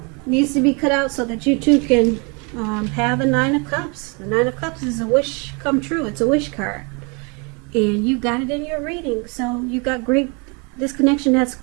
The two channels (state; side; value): quieter; left; 32.2 dB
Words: needs to be cut out so that you two can have the Nine of Cups. The Nine of Cups is a wish come true. It's a wish card. And you got it in your reading. So you got this connection has